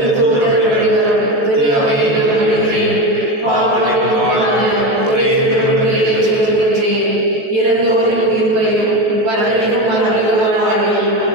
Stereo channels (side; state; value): left; late; 14 ms